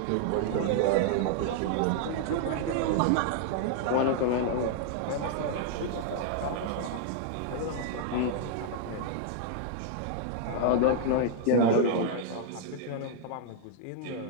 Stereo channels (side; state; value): both; different; correlation -0.01